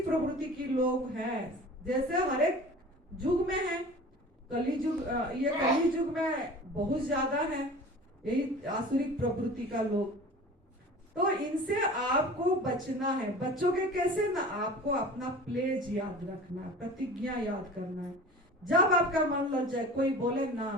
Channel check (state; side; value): normal; both; correlation 0.40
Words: प्रवृत्ति की लोग हैं, जैसे हर एक युग में है। कली युग, ये कली युग में बहुत ज्यादा है यही आसुरिक प्रवृत्ति का लोग। तो इनसे आपको बचना है। बच्चोगे कैसे ना, आपको अपना प्लेज याद रखना है, प्रतिज्ञा याद करना है। जब आपका मन लग जाए, कोई बोले